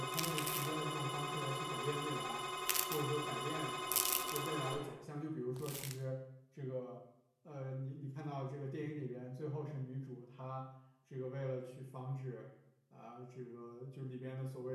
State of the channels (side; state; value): both; identical; correlation 1.00